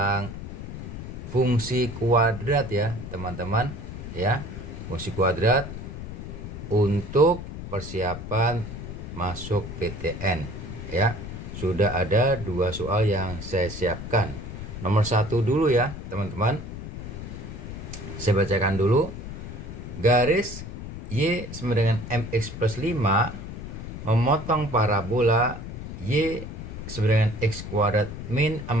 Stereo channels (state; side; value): noise; left; rumble, 9 dB below the sound